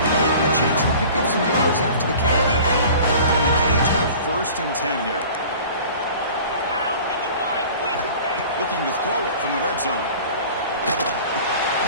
gave him a chance to pick up some yards after the catch. And the Canes have first and 10 here. Out 55. Quick. Looking to throw it from the red zone.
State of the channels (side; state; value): both; inverted; correlation -0.43